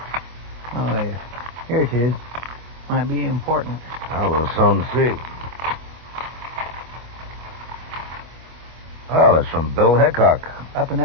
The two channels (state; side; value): late; left; 25 ms